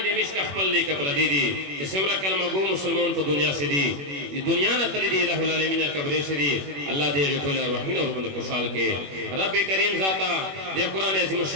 دی مشک خپل لی کپر دی دی کہ سمرا کلمہ گو مسلمان تو دنیا سے دی دنیا نہ تلی دی الہ العالمین قبر سے دی اللہ دے ٹول ارواحی اور بند خوشحال کے رب کریم ذاتا دے قرآن عظیم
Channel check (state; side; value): late; left; 21 ms